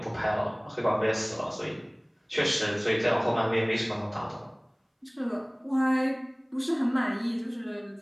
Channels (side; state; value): both; identical; correlation 1.00